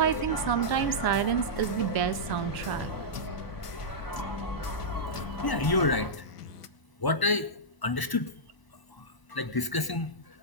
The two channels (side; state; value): right; late; 1.0 ms